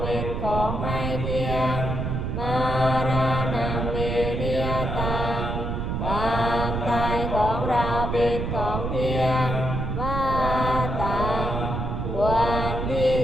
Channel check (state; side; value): noise; right; rumble, 2 dB below the sound